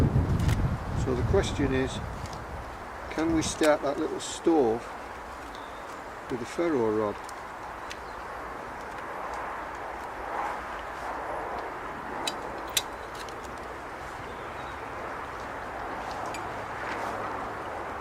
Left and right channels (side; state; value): both; identical; correlation 1.00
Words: So the question is, can we start that little stove with a ferro rod?